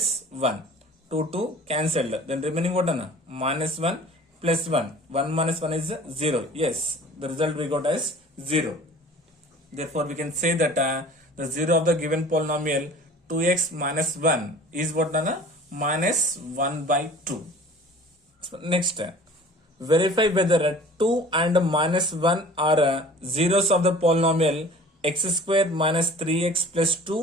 1. 2 cancelled. Then remaining what? Minus 1 plus 1. 1 minus 1 is 0. Yes. The result we got as 0. Therefore we can say that the 0 of the given polynomial 2x minus 1 is what? Minus 1 by 2. So next. Verify whether 2 and minus 1 are zeros of the polynomial x square minus 3x plus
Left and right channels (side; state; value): both; normal; correlation 0.45